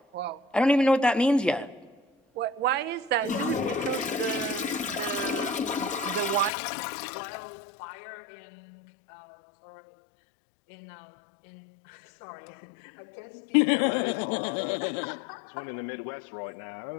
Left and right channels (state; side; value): drops out; right; at 6.5 s